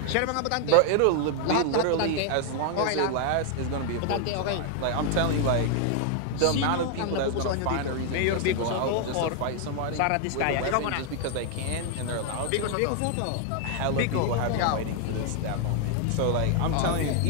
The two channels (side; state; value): both; different; correlation 0.00